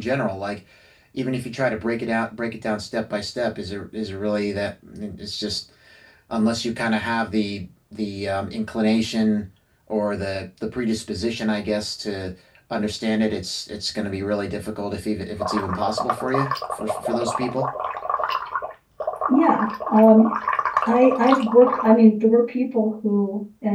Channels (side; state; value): both; identical; correlation 1.00